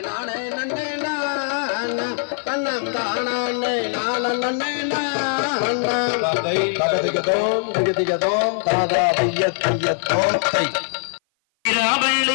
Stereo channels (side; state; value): right; silent; 56 dB below the other